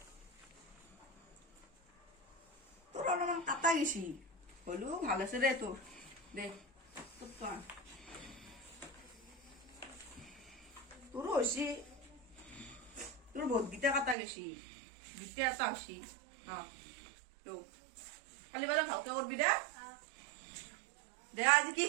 তোৰ অলপমান কাটা গেছি হলেও ভাল আছে দে তোৰ দে তোক তোৰো হৈছে তোৰ বহুতকেইটা কাটা গেছি দুটা এটা হৈছে কালি বেলা ভালকে কৰবি দে দে আজি কি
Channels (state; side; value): drops out; left; at 14.2 s